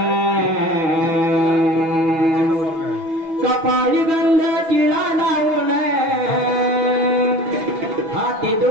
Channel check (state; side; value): late; left; 6.1 ms